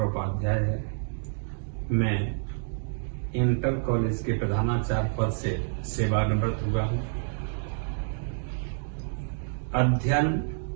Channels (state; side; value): silent; left; digital silence